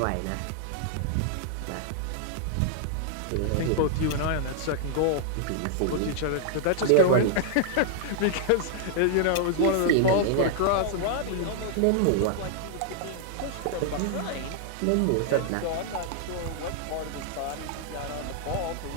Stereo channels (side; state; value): both; different; correlation -0.01